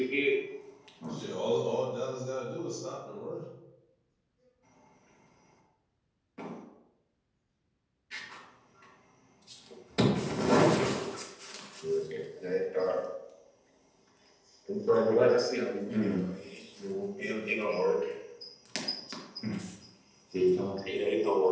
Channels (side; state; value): both; identical; correlation 1.00